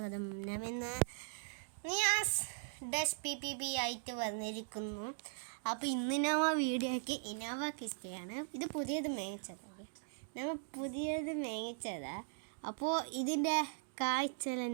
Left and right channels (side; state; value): left; silent; digital silence